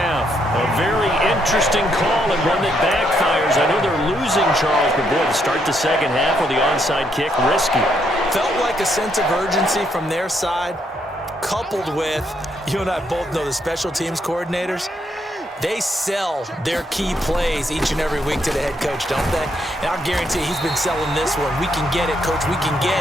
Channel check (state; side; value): normal; both; correlation 0.75